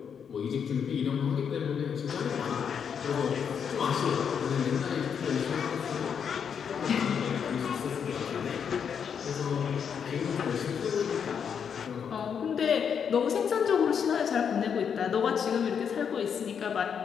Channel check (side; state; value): right; quieter; 7.3 dB